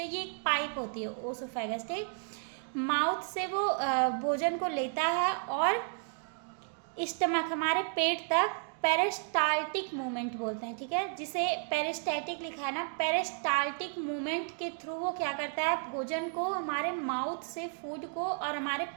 ये एक पाइप होती है ओसोफेगस। ठीक, माउथ से वो भोजन को लेता है और स्टमक हमारे पेट तक पेरिस्टाल्टिक मूवमेंट बोलते हैं, ठीक है, जिसे पेरिस्टैटिक लिखा है ना, पेरिस्टाल्टिक मूवमेंट के थ्रू वो क्या करता है, भोजन को हमारे माउथ से फूड को और हमारे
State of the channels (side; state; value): left; silent; 56 dB below the other